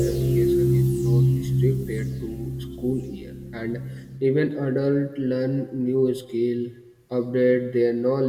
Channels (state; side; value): identical; both; correlation 1.00